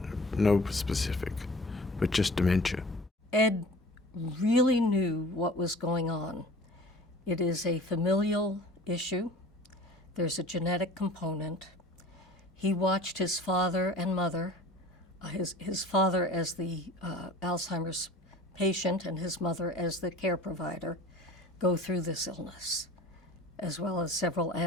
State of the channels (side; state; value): both; normal; correlation 0.43